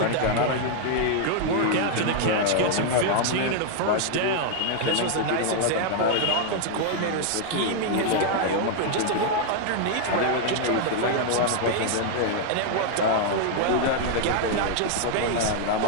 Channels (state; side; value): different; both; correlation 0.00